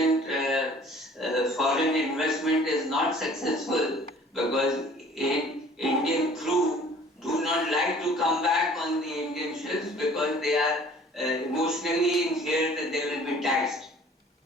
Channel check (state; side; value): normal; both; correlation 0.51